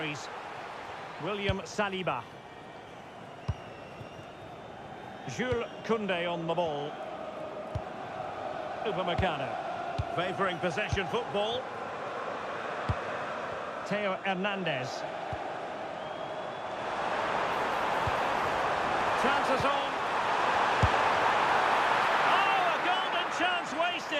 William Saliba. Jules Koundé on the ball. Upamecano. Favouring possession football. Theo Hernandez. Chances on. Chance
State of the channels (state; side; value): identical; both; correlation 1.00